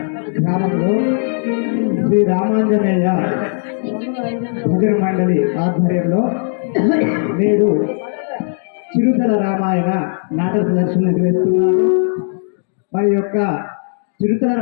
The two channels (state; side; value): silent; right; 63 dB below the other